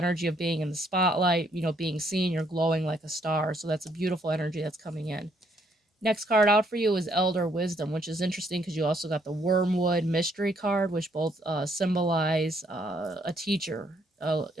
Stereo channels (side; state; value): both; normal; correlation 0.70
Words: of being in the spotlight, being seen. You're glowing like a star. So that's a beautiful energy that's coming in. Next card out for you is Elder Wisdom, which is interesting because you also got the Wormwood Mystery card, which both symbolize a teacher